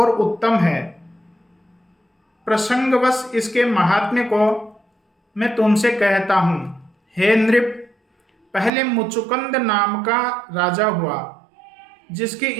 उत्तम है। प्रसंगवश इसके महात्म्य को मैं तुमसे कहता हूँ। हे नृप, पहले मुचुकुंद नाम का राजा हुआ, जिसकी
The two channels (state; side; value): drops out; left; at 8.7 s